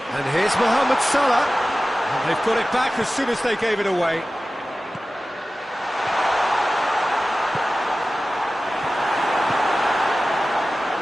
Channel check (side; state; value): both; normal; correlation 0.95